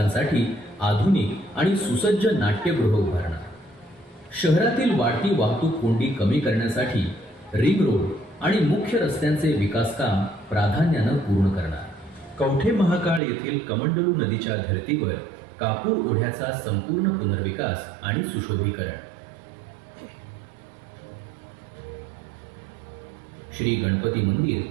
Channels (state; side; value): drops out; left; at 13.2 s